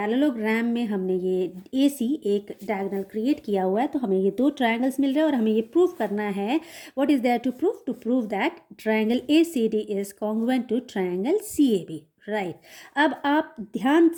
में हमने ये AC एक डायगोनल क्रिएट किया हुआ है। तो हमें ये दो ट्रायंगल्स मिल रहे हैं और हमें ये प्रूव करना है। What is there to prove that triangle ACD is congruent to triangle CAB, right. अब आप ध्यान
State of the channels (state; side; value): identical; both; correlation 1.00